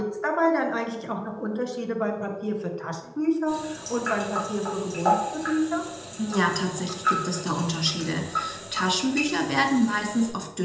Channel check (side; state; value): both; identical; correlation 1.00